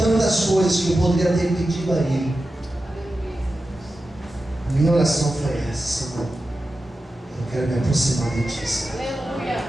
coisas que eu poderia ter pedido a Ele, a minha oração foi essa: Senhor, eu quero me aproximar de Ti.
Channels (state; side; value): normal; both; correlation 0.92